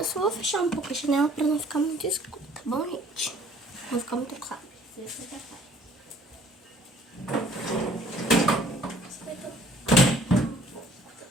só vou fechar um pouco a janela pra não ficar muito escuro, tá bom, gente? Não ficar muito claro.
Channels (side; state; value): both; normal; correlation 0.56